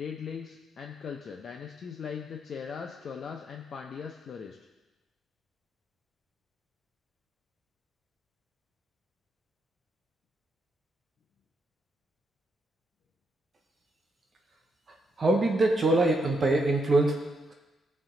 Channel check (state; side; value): normal; both; correlation 0.79